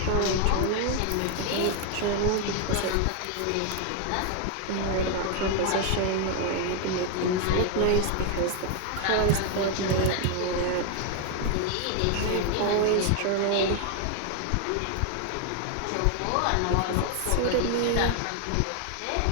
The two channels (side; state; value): both; different; correlation 0.01